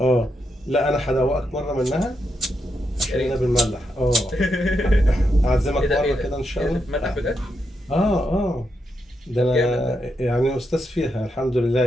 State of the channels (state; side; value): normal; both; correlation 0.83